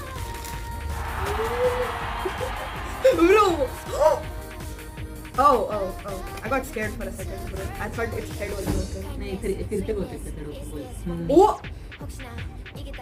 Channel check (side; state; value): both; identical; correlation 1.00